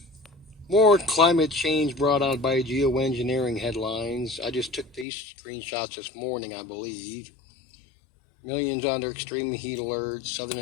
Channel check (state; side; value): drops out; right; at 5.1 s